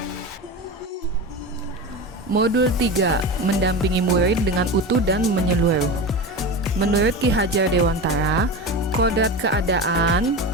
Modul 3, mendampingi murid dengan utuh dan menyeluruh. Menurut Ki Hajar Dewantara, kodrat keadaan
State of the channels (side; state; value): both; normal; correlation 0.25